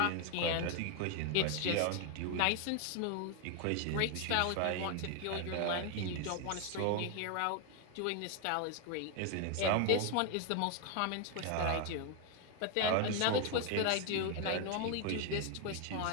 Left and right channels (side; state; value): both; different; correlation 0.01